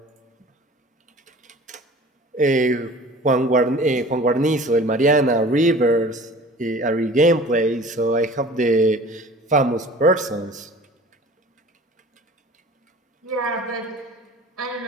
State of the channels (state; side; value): normal; both; correlation 0.43